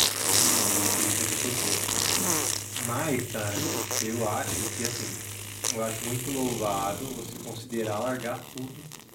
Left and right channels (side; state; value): both; identical; correlation 1.00